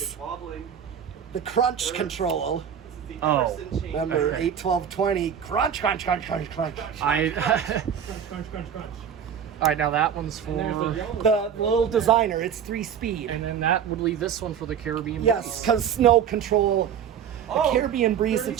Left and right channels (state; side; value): quieter; left; 8.3 dB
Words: the crunch control. Oh. Remember, Okay. 8, 12, 20, crunch, crunch, crunch, crunch, crunch. I. Crunch, crunch, crunch. All right, now that one's for. The little designer, it's 3-speed. And then that would leave this one for the Caribbean. Yes, Breeze. because snow control. The Oh, Caribbean Breeze, it